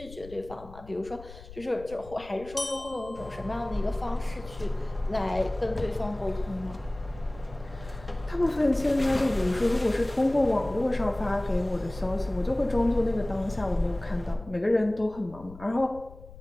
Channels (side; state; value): left; noise; rumble, 18 dB below the sound